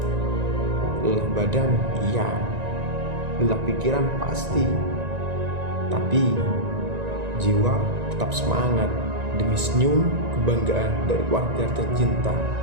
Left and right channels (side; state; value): left; late; 1.9 ms